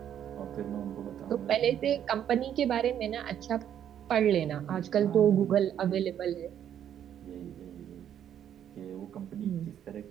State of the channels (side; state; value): left; quieter; 9.8 dB